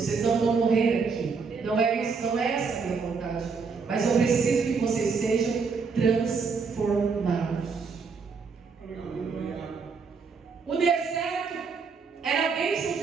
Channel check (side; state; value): left; quieter; 5.1 dB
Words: não vão morrer aqui. Não é isso, não é essa a minha vontade, mas eu preciso que vocês sejam transformados. O deserto era a bênção